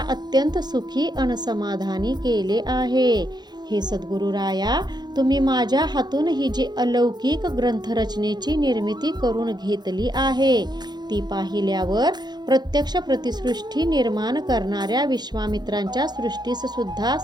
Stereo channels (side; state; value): left; late; 0.21 ms